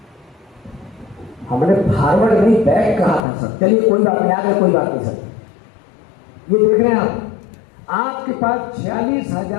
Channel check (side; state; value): right; drops out; at 3.2 s